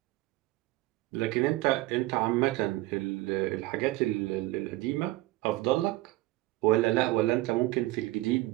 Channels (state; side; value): quieter; left; 18.8 dB